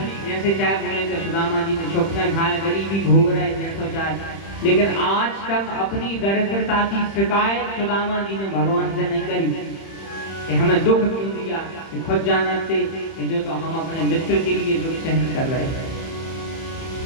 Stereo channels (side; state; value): right; late; 31 ms